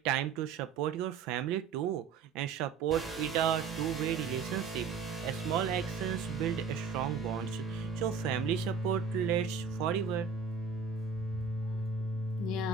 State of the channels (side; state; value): left; quieter; 5.8 dB